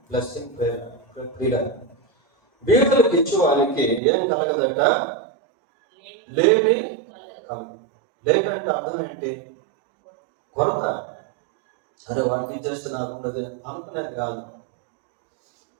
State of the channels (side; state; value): left; drops out; at 4.0 s